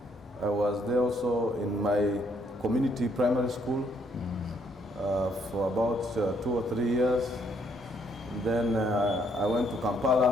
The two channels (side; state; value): both; normal; correlation 0.70